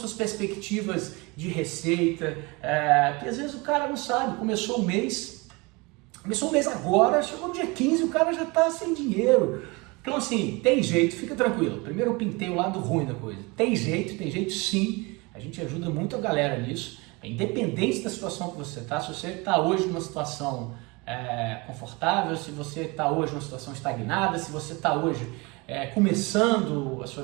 perspectivas de receita, porque às vezes o cara não sabe, começou o mês agora, chegou no dia 15, o cara já está sem dinheiro. Então assim, tem jeito, fica tranquilo. Primeiro eu pintei o lado ruim da coisa. Tem jeito sim. A gente ajuda muito a galera nisso, independente da situação que você está. Se você está hoje numa situação confortável, se você está hoje numa situação estagnada, se você está hoje começando a sua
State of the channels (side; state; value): left; quieter; 26.2 dB